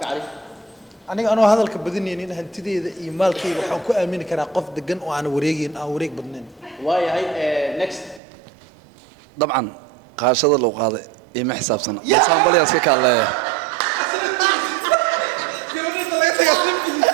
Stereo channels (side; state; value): left; drops out; at 8.2 s